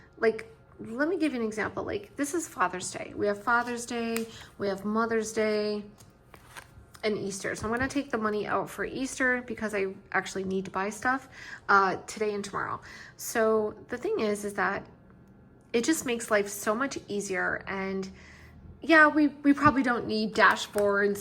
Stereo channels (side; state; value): both; identical; correlation 1.00